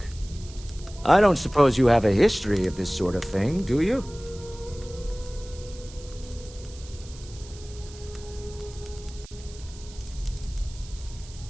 I don't suppose you have a history of this sort of thing, do you?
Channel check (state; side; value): noise; right; hiss, 19 dB below the sound